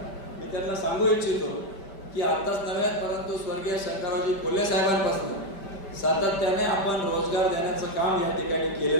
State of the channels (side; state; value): right; late; 5.1 ms